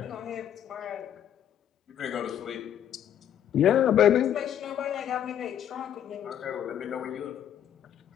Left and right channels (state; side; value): quieter; right; 10.1 dB